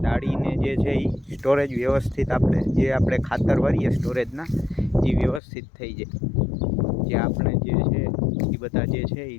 જે છે એ સ્ટોરેજ વ્યવસ્થિત આપણે ખાતર ભરીએ સ્ટોરેજના એ વ્યવસ્થિત થઈ જાય. જે આપણે જે છે એ બધા જે છે એ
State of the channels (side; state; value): right; drops out; at 5.4 s